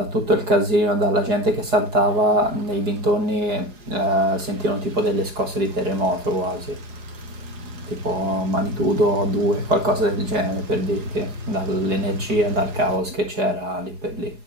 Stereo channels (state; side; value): late; left; 4.8 ms